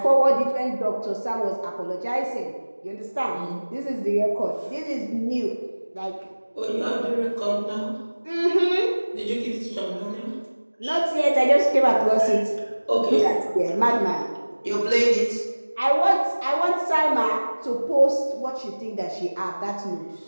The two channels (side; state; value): both; inverted; correlation -1.00